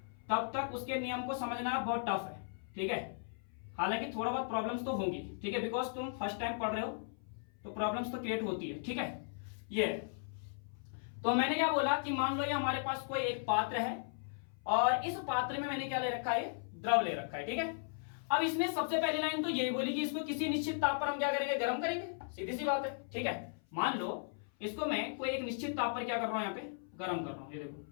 तब तक उसके नियम को समझना बहुत टफ है। ठीक है, हालांकि थोड़ा बहुत प्रॉब्लम्स तो होंगी। ठीक है, बिकॉज तुम फर्स्ट टाइम पढ़ रहे हो तो प्रॉब्लम्स तो क्रिएट होती है। ठीक है, ये तो मैंने क्या बोला कि मान लो ये हमारे पास कोई एक पात्र है, और इस पात्र में मैंने क्या ले रखा है, द्रव ले रखा है। ठीक है, अब इसने सबसे पहली लाइन तो यही बोली कि इसको किसी निश्चित ताप पर हम क्या करेंगे, गर्म करेंगे। सीधी सी बात है, ठीक है। मान लो इसको मैं कोई एक निश्चित ताप पर क्या कर रहा हूं, यहाँ पे गर्म कर रहा हूं, ये देखो,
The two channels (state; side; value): silent; right; 53 dB below the other